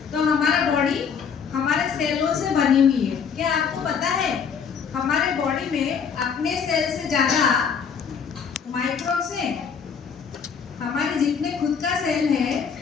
तो हमारा बॉडी हमारे सेलों से बनी हुई है। क्या आपको पता है हमारे बॉडी में अपने सेल से ज्यादा माइक्रोब्स हैं? हमारे जितने खुद का सेल है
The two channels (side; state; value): right; quieter; 6.6 dB